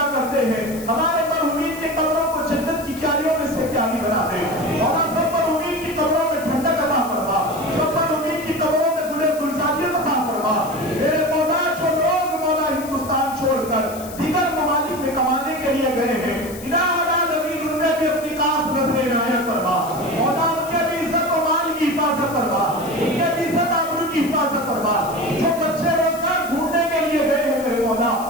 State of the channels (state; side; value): noise; left; hiss, 15 dB below the sound